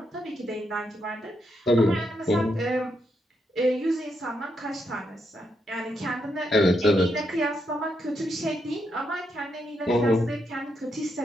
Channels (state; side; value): normal; both; correlation 0.80